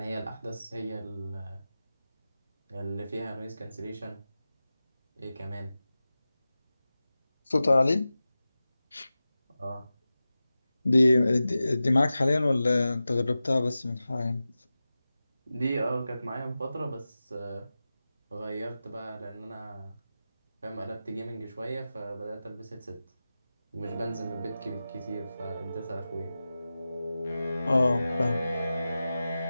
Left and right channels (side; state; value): both; inverted; correlation -0.95